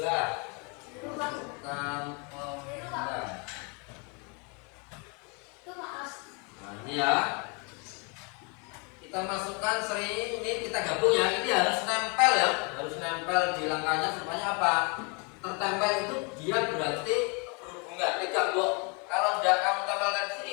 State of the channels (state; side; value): quieter; right; 33.5 dB